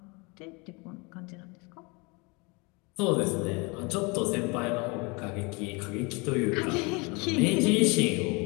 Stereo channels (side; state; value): right; quieter; 28.7 dB